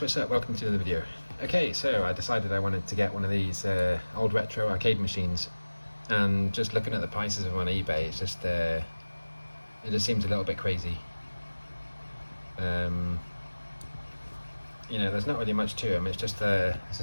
what's up? Welcome to another video. Okay, so I decided I wanted to get one of these old retro arcade machines, and just looking at the prices of them on eBay, it just seems a little bit crazy. You know, there's not really much to them. It's just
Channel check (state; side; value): inverted; both; correlation -1.00